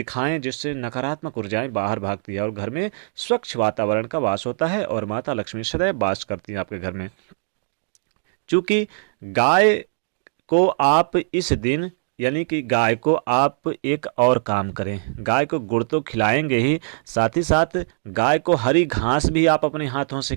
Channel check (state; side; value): silent; left; digital silence